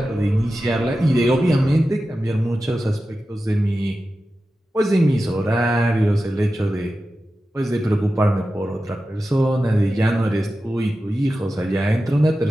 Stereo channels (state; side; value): normal; both; correlation 0.93